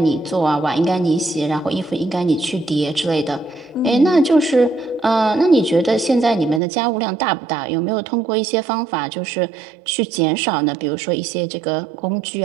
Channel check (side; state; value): left; drops out; at 6.6 s